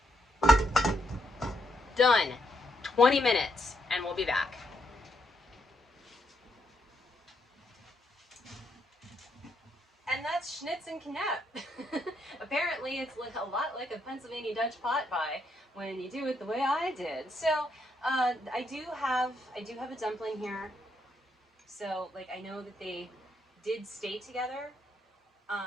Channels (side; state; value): both; normal; correlation 0.77